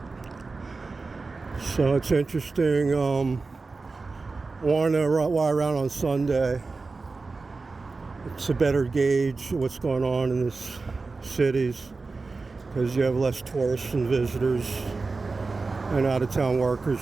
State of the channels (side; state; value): left; quieter; 3.9 dB